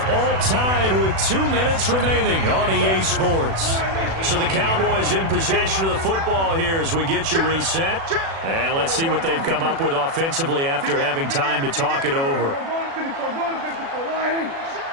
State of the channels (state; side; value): late; left; 36 ms